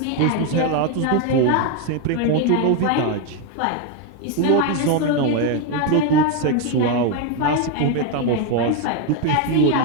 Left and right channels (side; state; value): both; different; correlation 0.01